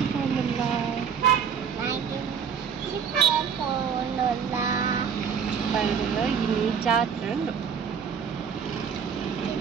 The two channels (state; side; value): quieter; left; 7.0 dB